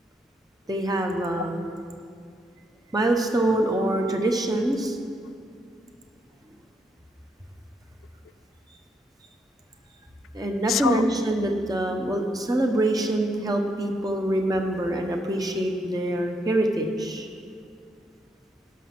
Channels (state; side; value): normal; both; correlation 0.76